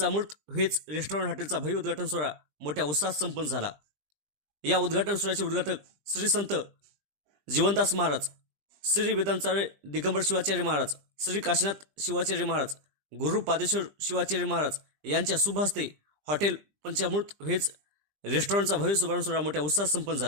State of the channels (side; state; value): left; late; 20 ms